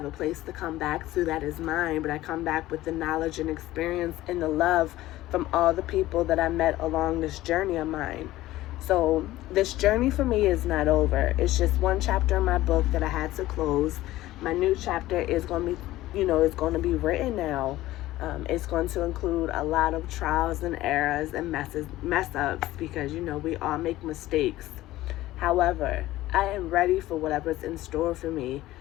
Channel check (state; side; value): quieter; right; 16.2 dB